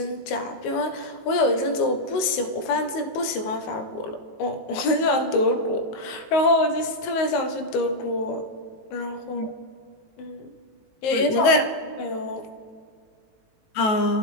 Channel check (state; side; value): late; right; 19 ms